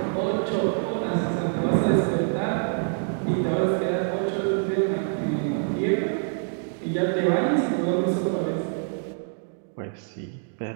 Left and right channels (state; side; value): silent; left; digital silence